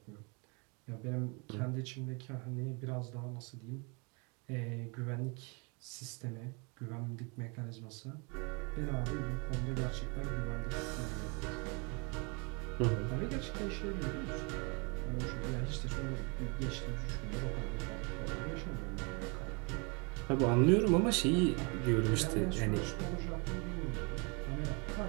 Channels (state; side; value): quieter; left; 32.2 dB